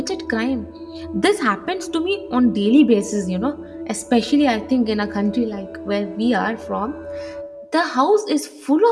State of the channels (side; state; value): both; identical; correlation 1.00